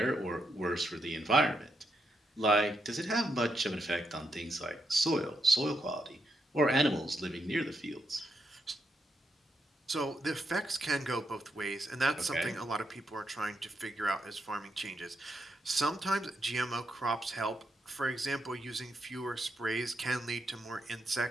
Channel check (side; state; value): both; normal; correlation 0.81